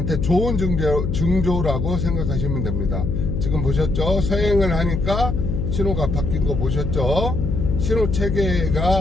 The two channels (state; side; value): noise; left; hum, 1 dB below the sound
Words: 좋은 징조라고 생각하시면 됩니다. 지금 보셨죠? 서행을 하니까 신호가 바뀐 거 보셨죠? 신호